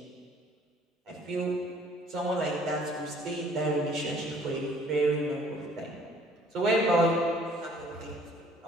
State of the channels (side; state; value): both; normal; correlation 0.57